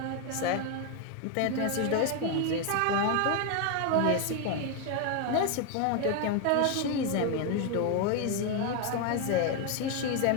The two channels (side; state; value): both; different; correlation 0.01